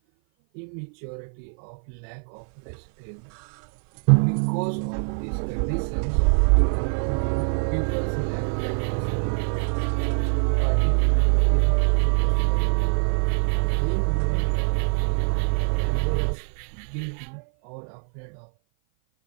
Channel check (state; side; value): silent; left; 56 dB below the other